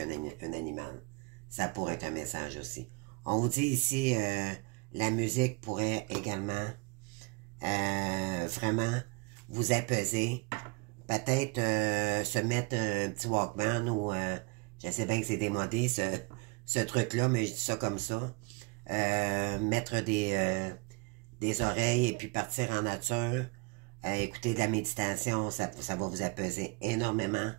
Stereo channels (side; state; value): left; quieter; 29.2 dB